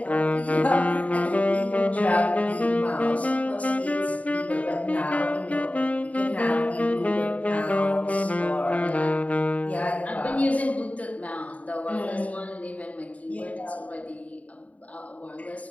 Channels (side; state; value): right; late; 0.069 ms